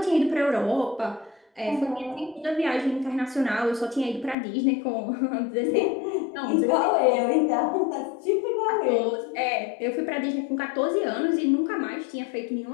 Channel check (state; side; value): drops out; right; at 4.4 s